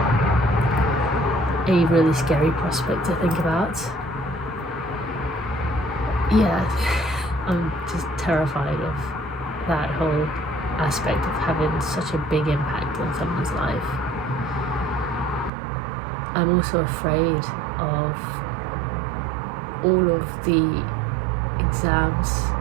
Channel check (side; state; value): left; drops out; at 15.5 s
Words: a really scary prospect to think about. Yeah, I'm just terrified of that whole aspect of having such a big impact on someone's life. I'm also afraid of all of the exams